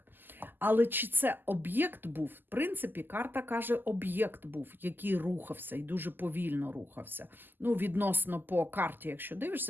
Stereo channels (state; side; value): late; left; 0.091 ms